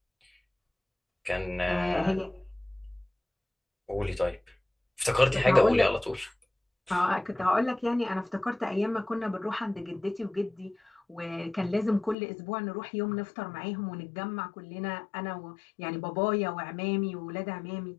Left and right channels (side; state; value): right; drops out; at 12.2 s